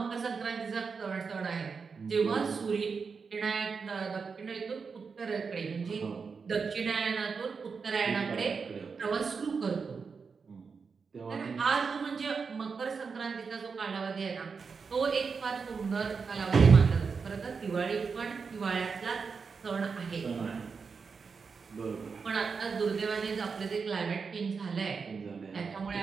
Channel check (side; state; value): left; quieter; 5.3 dB